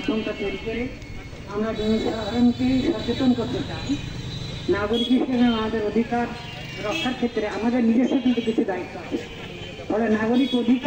তৈরি করে আমরা জনসাধারণকে সচেতন করতে চাই। নাগরিক হিসেবে আমাদের অধিকার রক্ষার ক্ষেত্রে আমাদের নিজস্ব কিন্তু কিছু দায়িত্ব আছে। ফলে নাগরিক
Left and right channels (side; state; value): both; identical; correlation 1.00